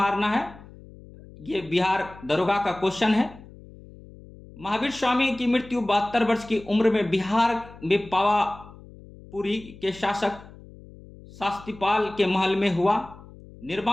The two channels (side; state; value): left; noise; hum, 20 dB below the sound